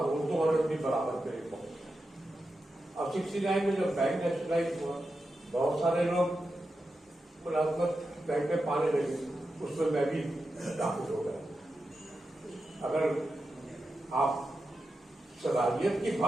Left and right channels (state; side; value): normal; both; correlation 0.89